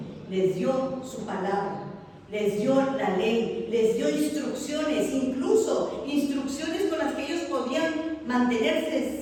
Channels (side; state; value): both; identical; correlation 1.00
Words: Les dio su palabra, les dio la ley, les dio instrucciones, incluso instrucciones con las que ellos podían